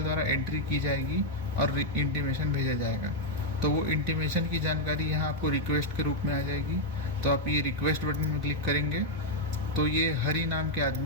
द्वारा एंट्री की जाएगी और इंटीमेशन भेजा जाएगा। तो वो इंटीमेशन की जानकारी यहाँ आपको रिक्वेस्ट के रूप में आ जाएगी। तो आप ये रिक्वेस्ट बटन में क्लिक करेंगे तो ये हरी नाम के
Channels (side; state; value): both; normal; correlation -0.01